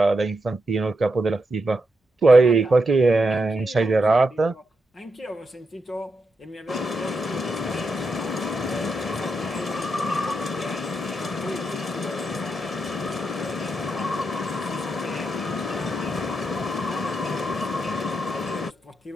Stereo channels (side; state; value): both; normal; correlation 0.84